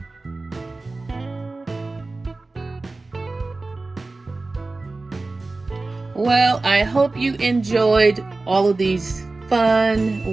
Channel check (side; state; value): left; quieter; 3.4 dB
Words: Well, I hope you enjoyed all of these